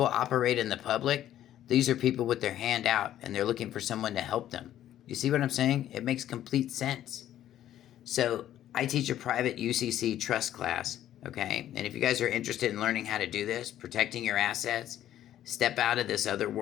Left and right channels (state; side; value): quieter; right; 12.0 dB